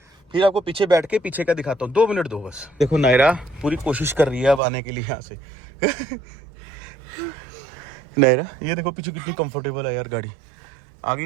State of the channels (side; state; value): left; drops out; at 4.6 s